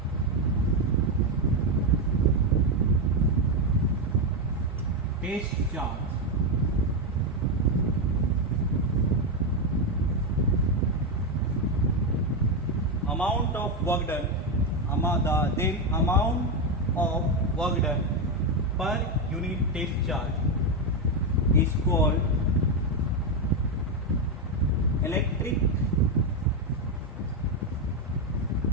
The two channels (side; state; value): both; normal; correlation 0.07